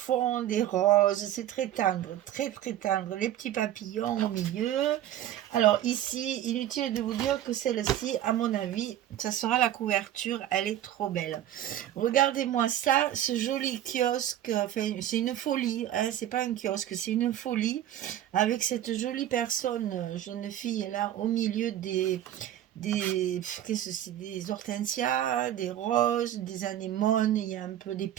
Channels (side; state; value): left; quieter; 12.0 dB